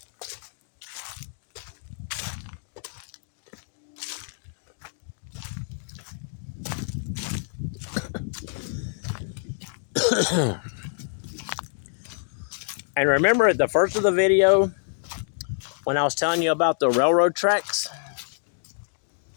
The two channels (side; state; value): right; silent; digital silence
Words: And remember at the first of the video when I was telling you about the railroad tracks?